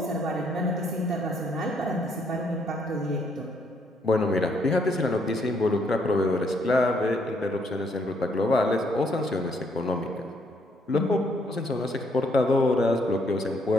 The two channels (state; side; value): normal; both; correlation 0.70